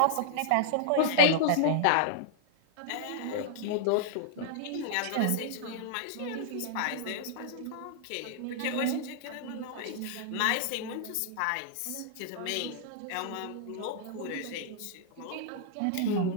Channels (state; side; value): different; both; correlation -0.02